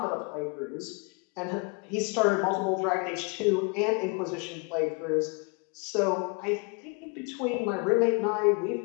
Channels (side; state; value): right; quieter; 33.2 dB